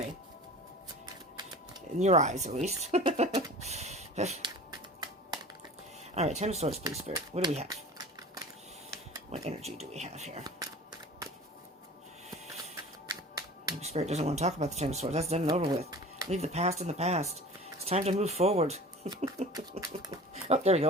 In your eyes, at least. Alright, Ten of Swords, please, Spirit. What do we have? What energy do we have here? Maybe Spirit doesn't want to talk about the Ten of Swords. That's done and over with. Leave the past in the past. It's time to move forward. Oh, there we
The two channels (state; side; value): normal; both; correlation 0.41